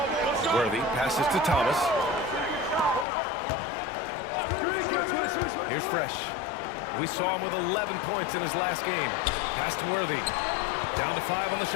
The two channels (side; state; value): right; drops out; at 3.1 s